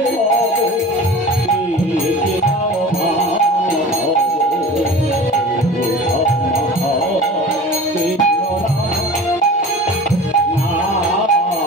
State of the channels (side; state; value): both; normal; correlation 0.38